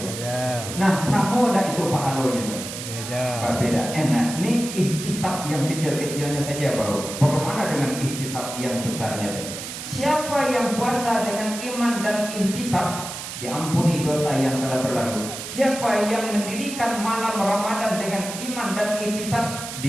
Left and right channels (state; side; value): noise; right; hiss, 8 dB below the sound